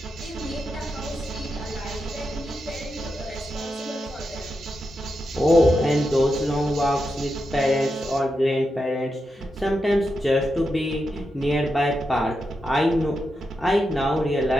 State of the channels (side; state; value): both; normal; correlation 0.86